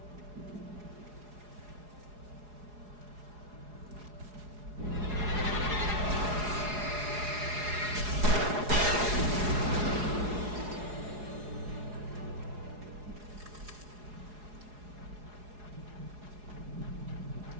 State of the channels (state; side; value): late; left; 4.8 ms